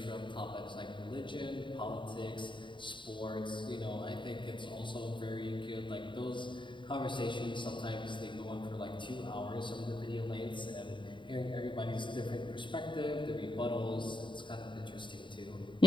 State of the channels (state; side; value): late; right; 0.23 ms